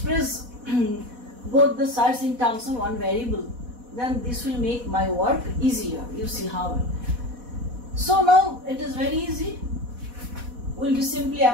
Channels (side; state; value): left; late; 4.1 ms